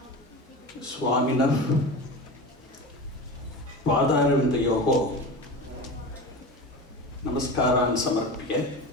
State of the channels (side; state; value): both; normal; correlation 0.29